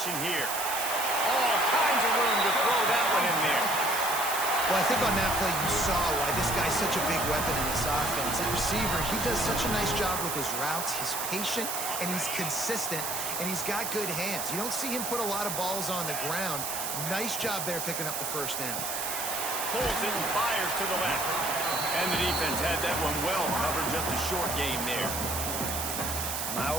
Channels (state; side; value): noise; right; hiss, 3 dB below the sound